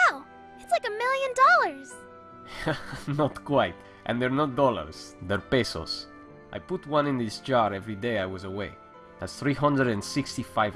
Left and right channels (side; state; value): both; identical; correlation 1.00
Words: It's like $1 million! Not quite. And they're not dollars, they're pesos. I put one in this jar every day I was away. That's 365